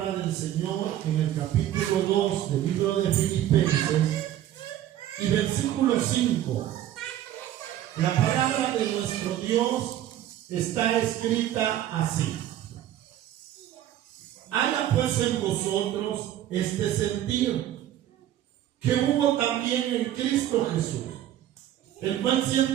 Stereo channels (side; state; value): left; quieter; 12.3 dB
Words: del Señor en el capítulo 2 del libro de Filipenses y versículo 5. La palabra de nuestro Dios está escrita así: haya pues en vosotros este sentir que hubo también en Cristo Jesús, el cual